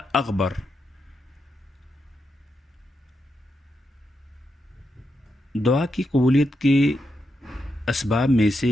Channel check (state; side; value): normal; both; correlation 0.85